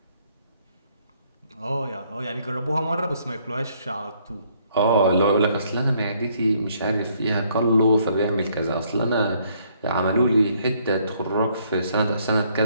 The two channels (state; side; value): inverted; both; correlation -0.67